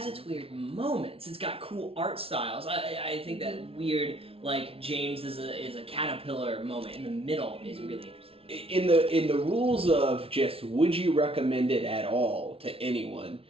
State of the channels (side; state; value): left; late; 0.27 ms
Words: its weird moments. It's got cool art styles. I think that weird, like James is a caterpillar moment in the middle is really interesting. In the rules of just would you recommend it at all to anyone,